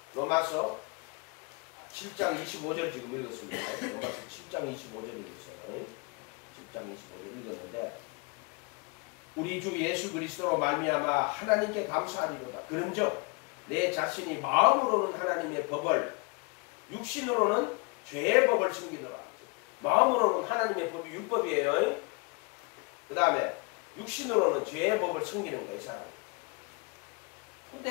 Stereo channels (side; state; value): right; quieter; 29.8 dB